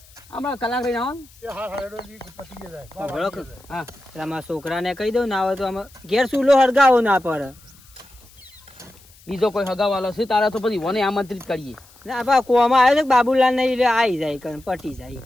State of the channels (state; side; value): noise; left; hiss, 26 dB below the sound